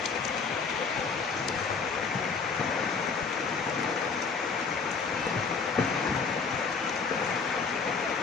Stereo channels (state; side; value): quieter; right; 5.1 dB